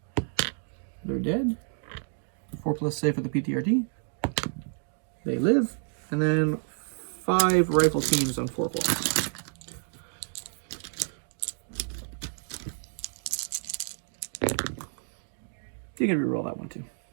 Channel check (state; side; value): silent; left; 58 dB below the other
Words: They're dead. 4+ save for the PTRD. They live, and then 5 rifle teams on 4+. You can reroll that one too.